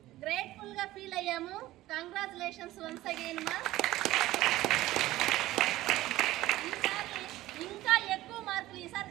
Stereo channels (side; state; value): left; quieter; 16.3 dB